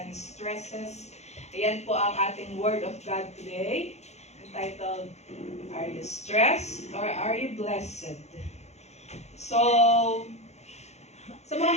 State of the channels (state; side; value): late; right; 0.32 ms